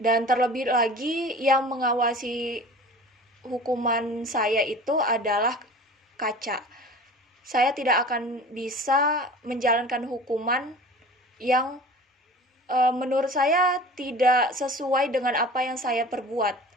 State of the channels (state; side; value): normal; both; correlation 0.40